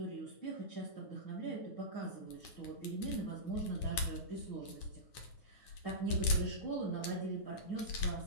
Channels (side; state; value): right; late; 9.7 ms